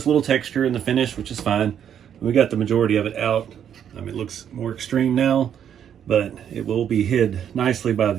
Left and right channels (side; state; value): left; quieter; 9.0 dB